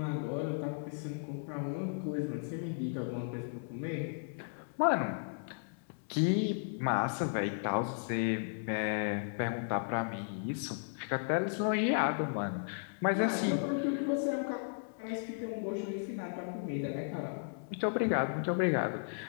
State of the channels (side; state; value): right; silent; 54 dB below the other